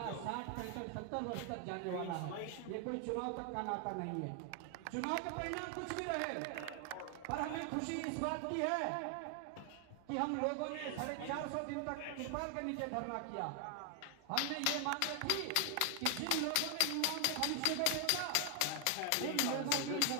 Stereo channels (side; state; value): both; different; correlation 0.00